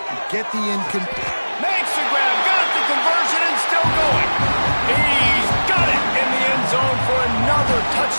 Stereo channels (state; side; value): inverted; both; correlation -1.00